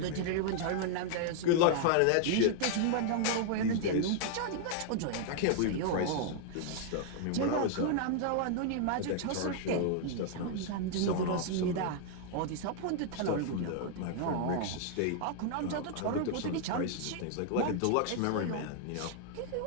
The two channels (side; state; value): both; different; correlation -0.01